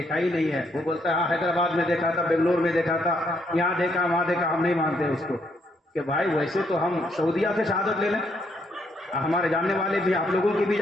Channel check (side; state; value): both; normal; correlation 0.73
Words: ہی نہیں ہے، وہ بولتا ہے ہاں حیدرآباد میں دیکھا تھا، بنگلور میں دیکھا تھا، یہاں دیکھا وہاں دیکھا، ہم نہیں مانتے اس کو کہ بھائی ویسے تو ہم سعودیہ سے شہادت لے لیں، ہمارے جاننے والے بھی، آپ لوگوں کے بھی